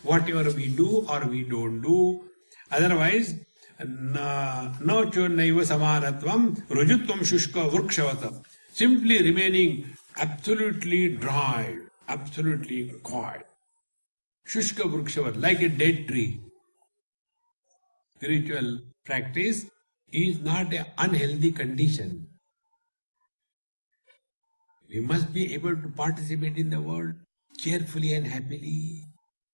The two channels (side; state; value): both; inverted; correlation -1.00